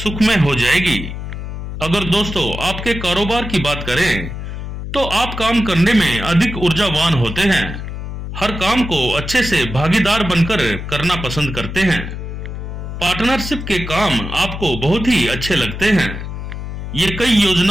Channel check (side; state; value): left; noise; hum, 7 dB below the sound